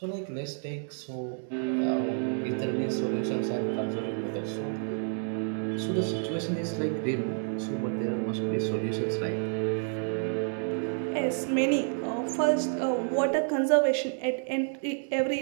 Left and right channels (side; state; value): left; silent; 58 dB below the other